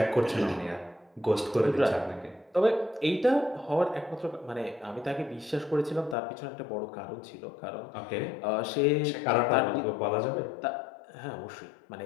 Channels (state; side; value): drops out; right; at 6.2 s